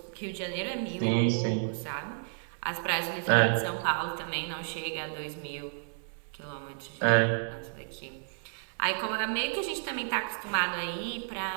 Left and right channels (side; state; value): left; silent; digital silence